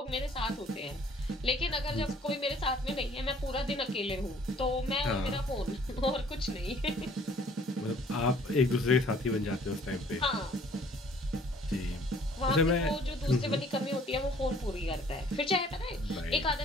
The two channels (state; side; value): normal; both; correlation 0.56